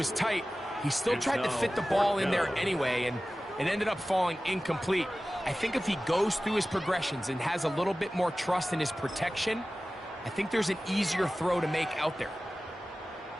tight, he still tried to fit the ball in there anyway, and it ended up falling incomplete. I think if he goes through his progressions and has a little bit more trust in his protection, I think there's an easier throw to make out there.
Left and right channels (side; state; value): both; normal; correlation 0.96